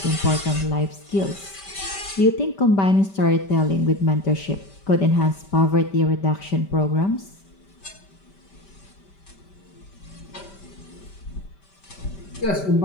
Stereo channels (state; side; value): late; right; 5.1 ms